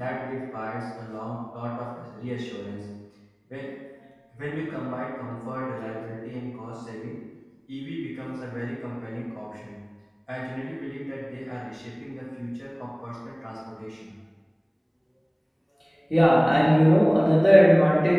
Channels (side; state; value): both; identical; correlation 1.00